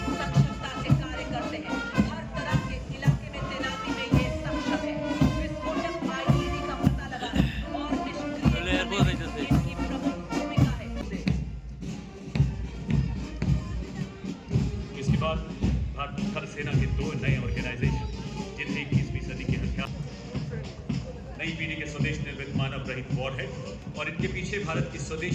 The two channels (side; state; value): both; identical; correlation 1.00